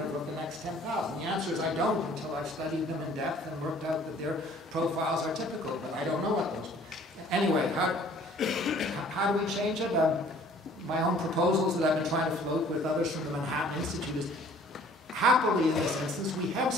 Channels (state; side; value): normal; both; correlation 0.54